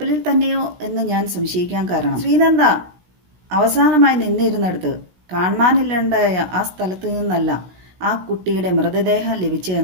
തന്നെയോ എന്ന് ഞാൻ സംശയിക്കാൻ കാരണം, ശ്രീനന്ദ അവസാനമായി നിന്നിരുന്നിടത്ത് കാണാനില്ലാണ്ടായ ആ സ്ഥലത്ത് നിന്നല്ല ആ കുട്ടിയുടെ മൃതദേഹം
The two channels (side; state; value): left; late; 16 ms